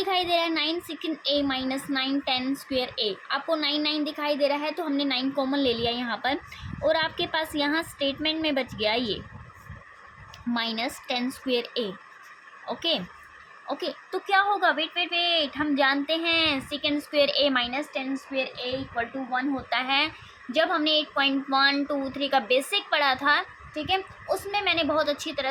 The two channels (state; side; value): identical; both; correlation 1.00